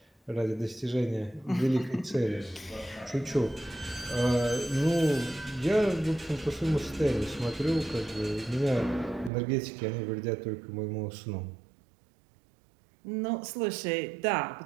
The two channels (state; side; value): drops out; left; at 9.3 s